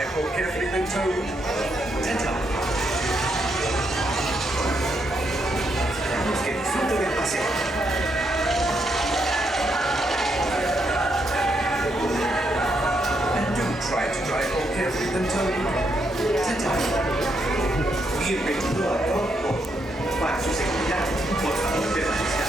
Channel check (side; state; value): both; normal; correlation 0.78